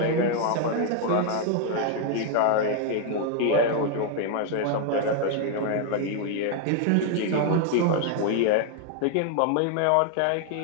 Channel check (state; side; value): different; both; correlation 0.00